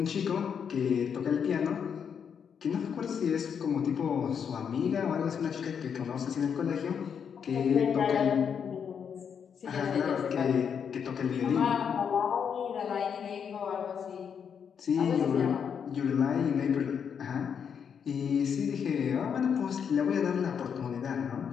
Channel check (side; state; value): right; quieter; 7.3 dB